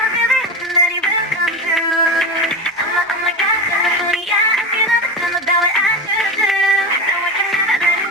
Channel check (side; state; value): both; normal; correlation 0.22